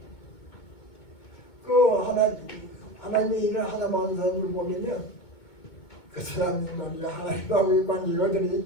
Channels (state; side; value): late; right; 2.2 ms